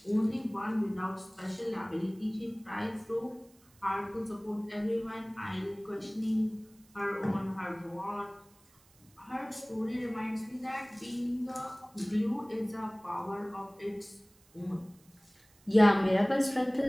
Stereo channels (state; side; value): noise; right; hiss, 30 dB below the sound